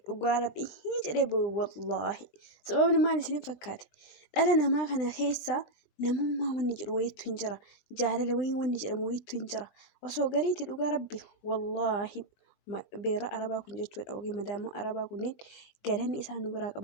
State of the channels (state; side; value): late; right; 20 ms